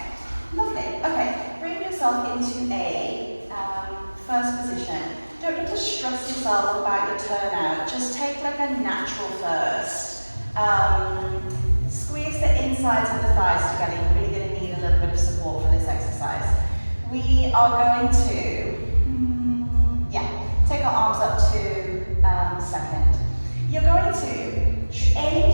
Lovely. Okay. Bring yourself into a first position. Don't need to stress yourself about your turnout. Just take like a natural first. Squeeze the insides of the thighs together. You're really going to need a little bit of support for this exercise. We are going to, take our arms up to second. You're going to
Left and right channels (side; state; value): both; inverted; correlation -1.00